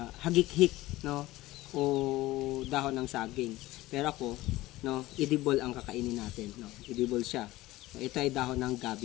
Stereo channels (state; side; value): quieter; right; 17.8 dB